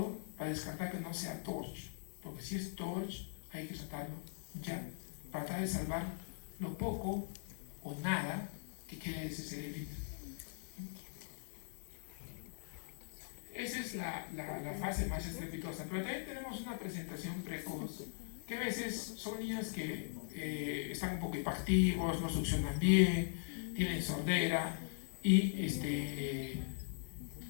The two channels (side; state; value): right; silent; 51 dB below the other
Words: para descartar que no sea torch, porque si es torch hay que tratarlo ya, para tratar de salvar lo poco o nada que quede de ese cerebrito. Esa es la fase más estrepitosa, pero también tenemos una presentación precoz, que a veces son niños que están un poco hiperactivos, no succionan bien, tienen sordera, y